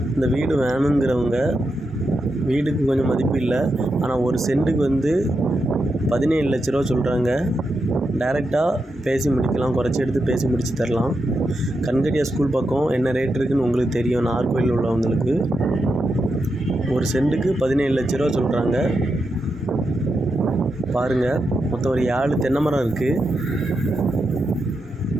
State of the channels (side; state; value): both; normal; correlation 0.86